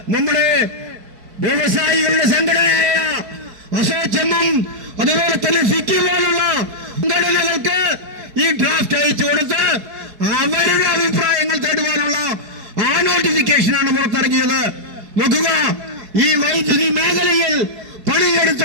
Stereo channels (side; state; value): left; late; 4.7 ms